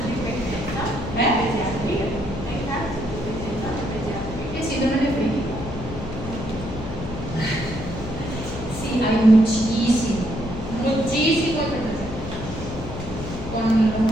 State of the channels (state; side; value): noise; left; hum, 9 dB below the sound